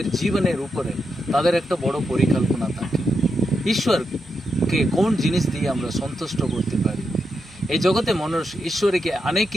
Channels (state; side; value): normal; both; correlation 0.84